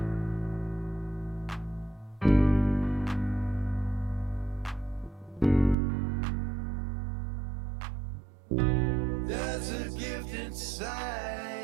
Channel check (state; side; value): drops out; left; at 5.8 s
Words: There's a gift